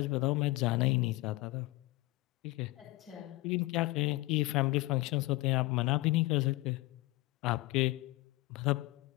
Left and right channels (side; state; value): right; quieter; 20.9 dB